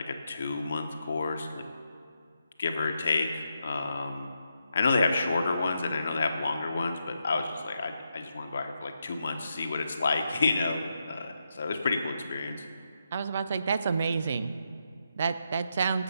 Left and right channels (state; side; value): inverted; both; correlation -0.83